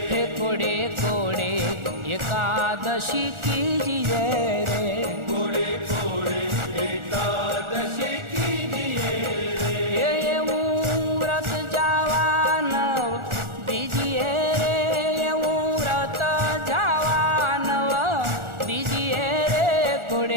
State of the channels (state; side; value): late; left; 1.4 ms